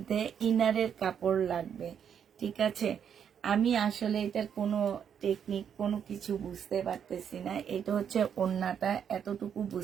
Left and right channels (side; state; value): left; quieter; 8.2 dB